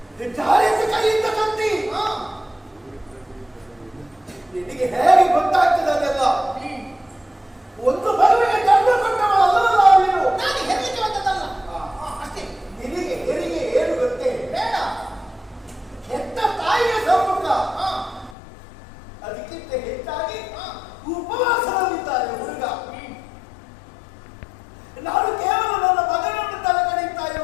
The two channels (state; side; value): drops out; right; at 18.4 s